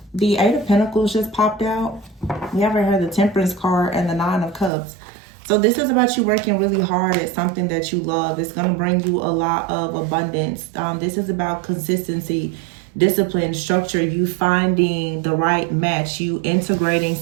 The Eight of Pentacles just popped out. We haven't heard the Temperance card and the Nine of Cups. So this is about you working really hard at something that you love. It's going to bring you a lot of abundance. This is about consistency, discipline, structure, you finding the right match, you integrating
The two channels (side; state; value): left; drops out; at 4.7 s